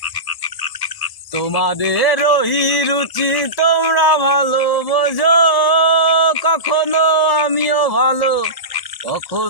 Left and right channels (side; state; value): right; late; 1.0 ms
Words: তোমাদের ওই রুচি তোমরা ভালো বোঝো, কখনো আমিও ভালো,